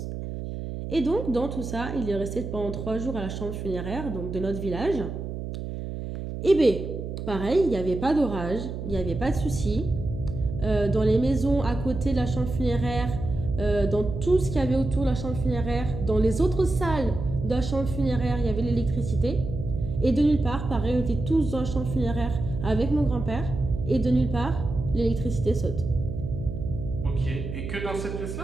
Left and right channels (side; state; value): right; noise; hum, 6 dB below the sound